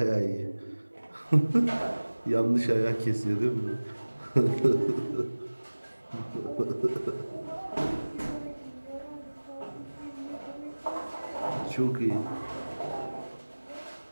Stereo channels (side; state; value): both; inverted; correlation -1.00